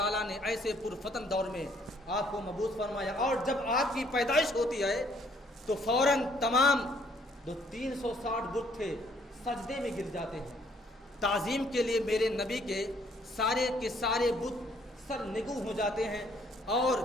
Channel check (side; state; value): both; normal; correlation 0.64